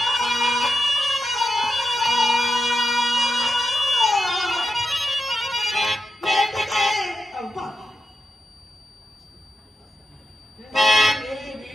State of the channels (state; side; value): normal; both; correlation 0.89